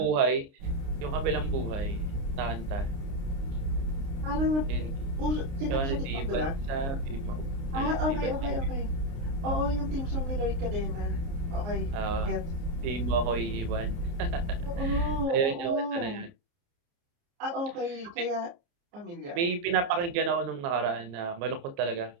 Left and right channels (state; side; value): late; left; 29 ms